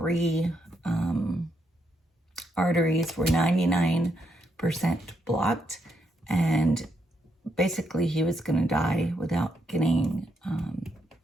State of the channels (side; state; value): both; normal; correlation 0.79